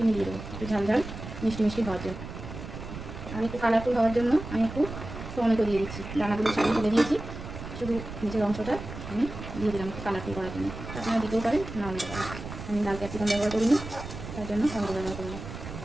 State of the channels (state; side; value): noise; right; rumble, 10 dB below the sound